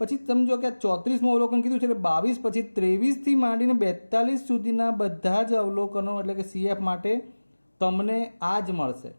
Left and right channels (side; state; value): both; inverted; correlation -1.00